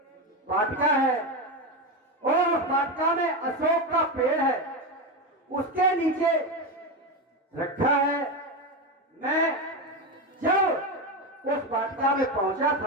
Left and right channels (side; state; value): both; normal; correlation 0.15